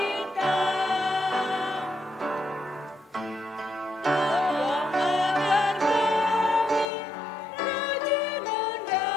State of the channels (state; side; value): drops out; right; at 6.9 s